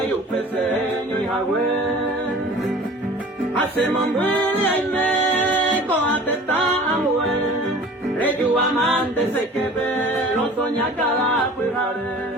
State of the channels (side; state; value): both; normal; correlation 0.44